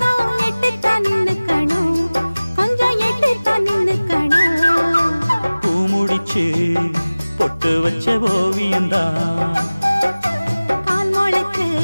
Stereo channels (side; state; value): both; inverted; correlation -0.99